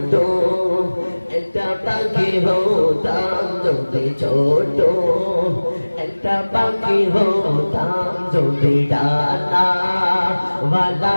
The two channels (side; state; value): both; inverted; correlation -1.00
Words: একটা পাখি হতাম, যদি ছোট একটা পাখি হতাম, যদি ডানা ওয়ালা